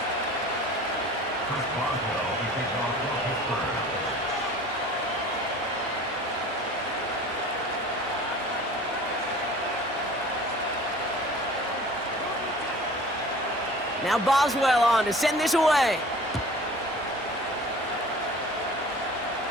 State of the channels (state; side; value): normal; both; correlation 0.44